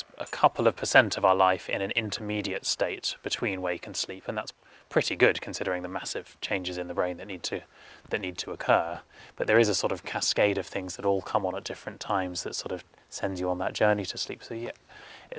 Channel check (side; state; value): both; identical; correlation 1.00